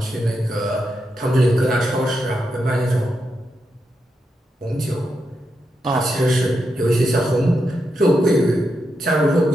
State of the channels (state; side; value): normal; both; correlation 0.85